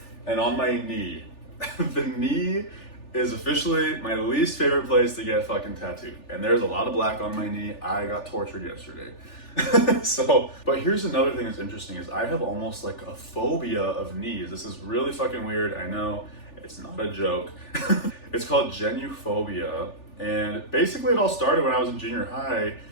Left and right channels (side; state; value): right; late; 3.4 ms